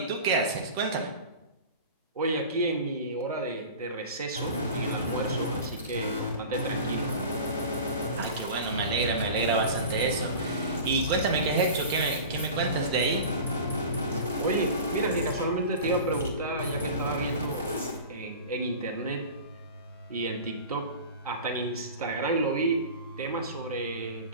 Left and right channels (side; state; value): both; inverted; correlation -0.36